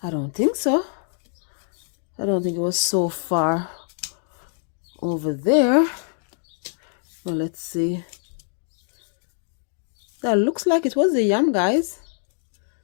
I don't think so. I don't think it was so far over there. Well, let's see. That looks like it was the yam, guys.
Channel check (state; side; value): silent; right; digital silence